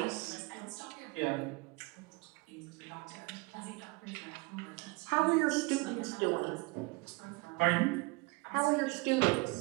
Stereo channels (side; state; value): left; quieter; 26.0 dB